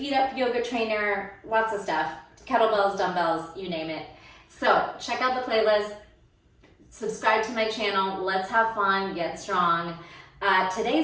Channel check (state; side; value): identical; both; correlation 1.00